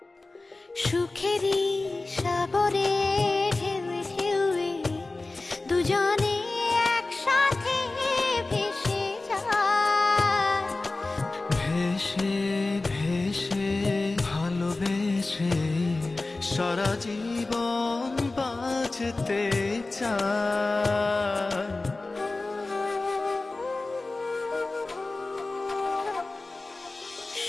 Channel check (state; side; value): quieter; right; 3.3 dB